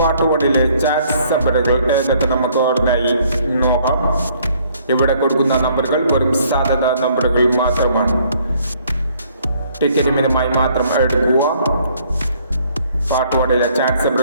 1-ലെ ചാറ്റ് നമ്പറുകൾ ഏതൊക്കെ നമുക്ക് ഓർമ്മയായി നോക്കാം. ഇവിടെ കൊടുക്കുന്ന നമ്പറുകൾ വെറും സാധ്യത നമ്പറുകൾ മാത്രമാണ്. ടിക്കറ്റ് മിതമായി മാത്രം എടുക്കുക. പാർട്ട് 1-ലെ ചാറ്റ്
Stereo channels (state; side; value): inverted; both; correlation -0.63